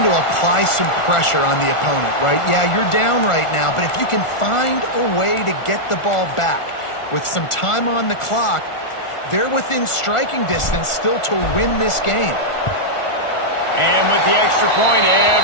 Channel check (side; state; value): right; late; 1.4 ms